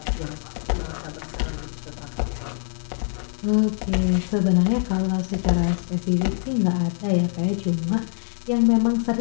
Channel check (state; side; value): silent; right; digital silence